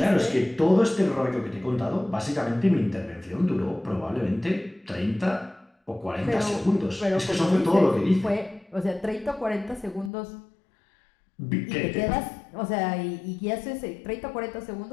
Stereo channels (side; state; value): right; drops out; at 10.1 s